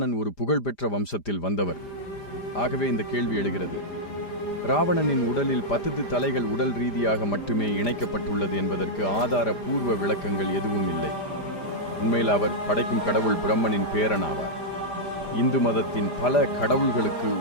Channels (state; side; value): late; right; 5.0 ms